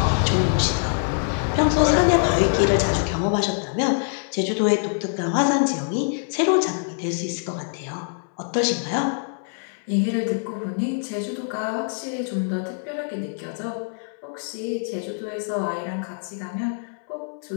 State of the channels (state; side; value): silent; right; digital silence